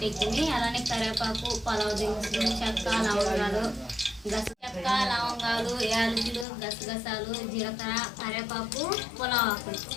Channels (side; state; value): right; drops out; at 6.5 s